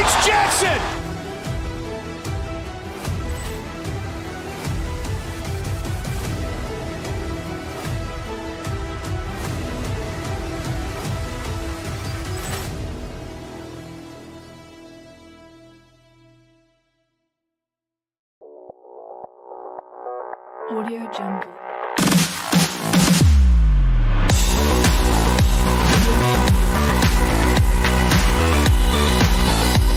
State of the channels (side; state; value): both; identical; correlation 1.00